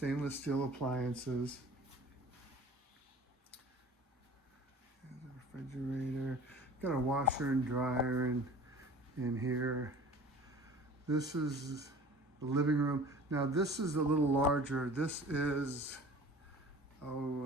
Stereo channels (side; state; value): both; normal; correlation 0.44